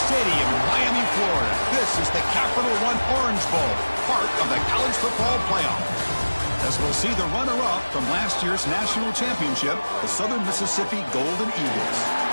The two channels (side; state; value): both; inverted; correlation -1.00